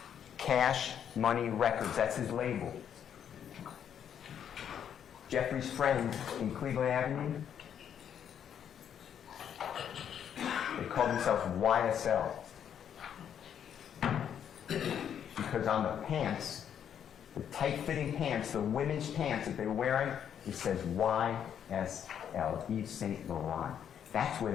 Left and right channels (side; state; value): right; quieter; 8.8 dB